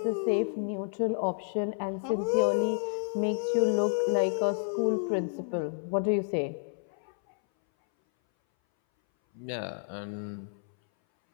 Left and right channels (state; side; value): silent; right; 58 dB below the other